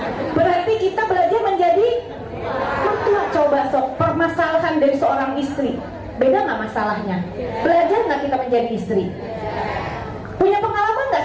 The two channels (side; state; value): both; identical; correlation 1.00